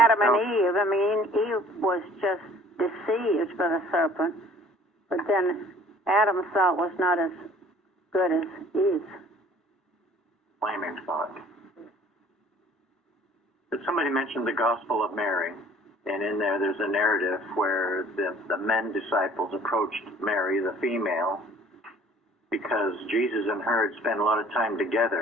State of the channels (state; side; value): normal; both; correlation 0.53